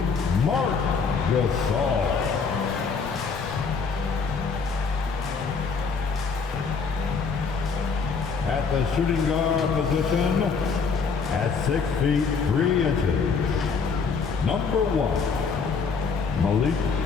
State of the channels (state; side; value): quieter; right; 5.3 dB